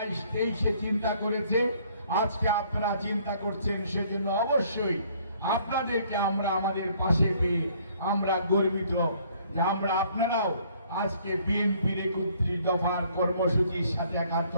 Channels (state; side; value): inverted; both; correlation -0.62